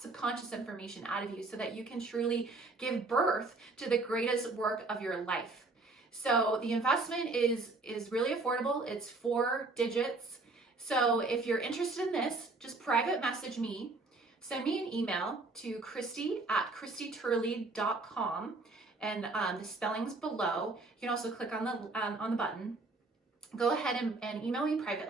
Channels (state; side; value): quieter; left; 3.4 dB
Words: information out of you so that you can truly give birth to the greatest work of your life. So the investment is really affordable. It's 4 digits. So if you're interested in this, just private message me. Send me an email to christie@christieturley.com, and the spelling's below. You can also click on the button. Go ahead and email me